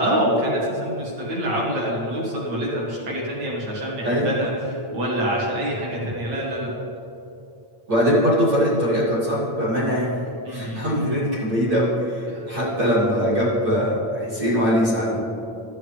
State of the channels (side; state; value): left; late; 8.8 ms